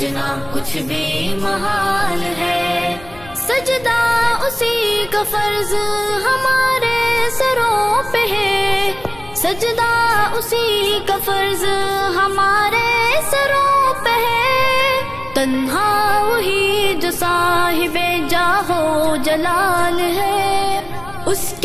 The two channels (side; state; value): left; noise; rumble, 21 dB below the sound